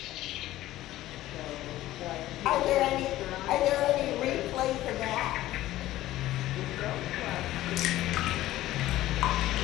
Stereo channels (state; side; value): quieter; right; 15.2 dB